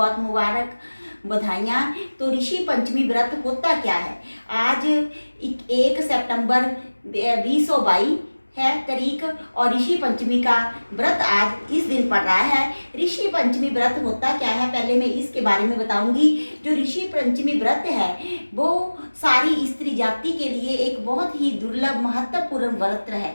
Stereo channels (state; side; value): inverted; both; correlation -1.00